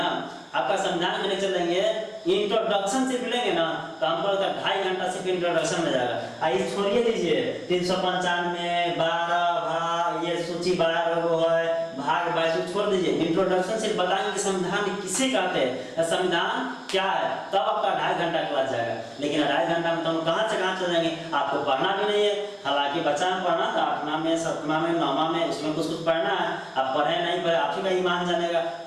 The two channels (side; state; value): both; identical; correlation 1.00